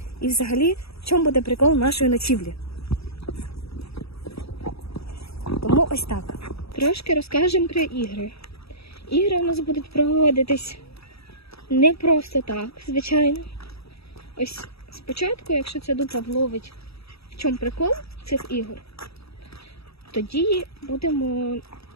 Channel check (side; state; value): right; late; 0.77 ms